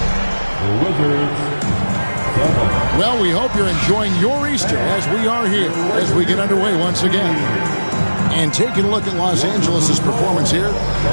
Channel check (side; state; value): both; inverted; correlation -1.00